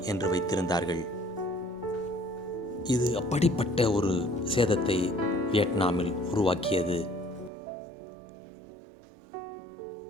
என்று வைத்திருந்தார்கள். இது அப்படிப்பட்ட ஒரு சேதத்தை வியட்நாமில் உருவாக்கியது.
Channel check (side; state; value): left; drops out; at 7.5 s